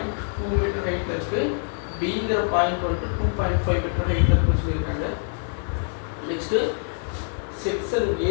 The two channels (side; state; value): right; silent; 62 dB below the other